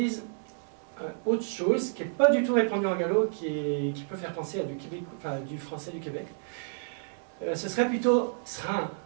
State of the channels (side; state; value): left; silent; 58 dB below the other